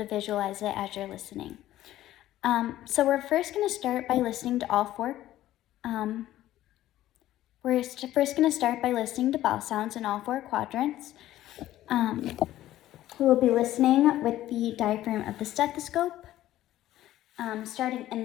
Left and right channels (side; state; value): right; quieter; 14.0 dB